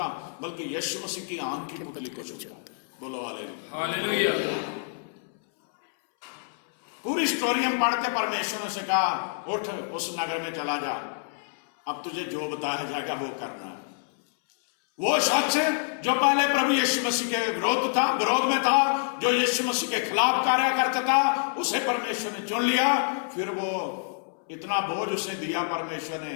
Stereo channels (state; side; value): silent; right; 60 dB below the other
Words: बल्कि यीशु मसीह की आंख की पुतली को छूता। बोलो हालेलुया, हालेलुया। पूरी स्टोरी हम पढ़ते, परमेश्वर ने से कहा, उठ उस नगर में चला जा, अब तुझे जो बताया जाएगा वो करना। वो शख्स जो पहले प्रभु यीशु मसीह के विरोध में था, जो यीशु मसीह के खिलाफ कार्य करता था, उसे परमेश्वर ने चुन लिया। फिर वो इतना बोझ उसे दिया परमेश्वर ने